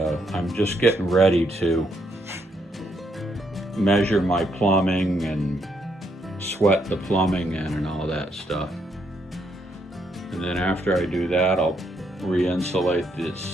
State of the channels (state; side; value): normal; both; correlation 0.75